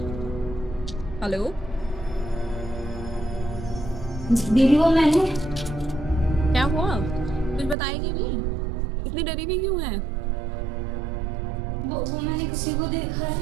हेलो। दीदी वो मैंने क्या हुआ, कुछ बताएगी भी? इतनी डरी भी क्यों है? वो मैंने किसी को देखा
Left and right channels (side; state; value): left; drops out; at 7.8 s